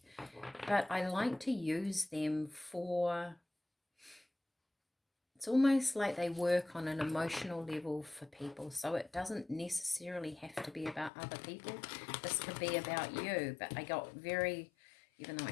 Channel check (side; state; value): right; drops out; at 11.1 s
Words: but I like to use them for, it's almost like they work on an emotional level for people, so it doesn't necessarily have to be about other people. This could be about you, but I got very, even though I